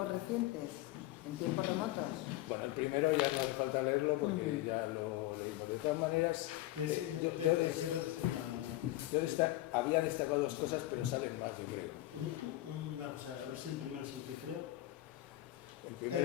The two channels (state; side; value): quieter; right; 16.2 dB